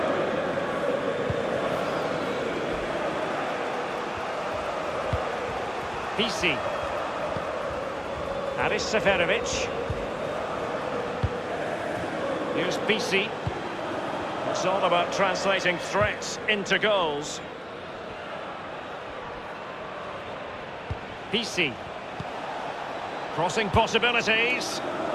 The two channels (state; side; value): identical; both; correlation 1.00